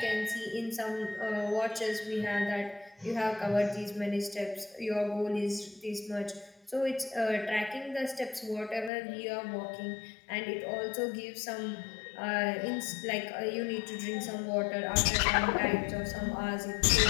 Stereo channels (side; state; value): right; drops out; at 8.9 s